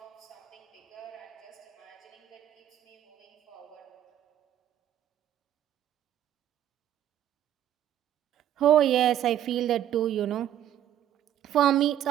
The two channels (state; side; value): quieter; left; 11.4 dB